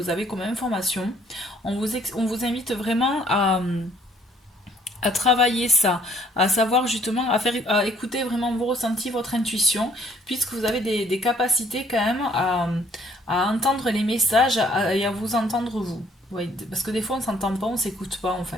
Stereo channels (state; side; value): normal; both; correlation 0.61